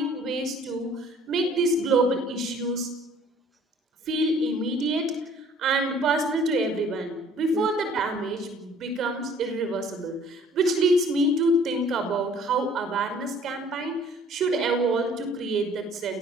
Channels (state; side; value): normal; both; correlation 0.55